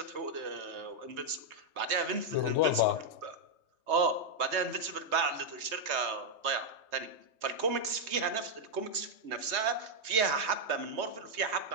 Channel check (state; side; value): late; left; 3.2 ms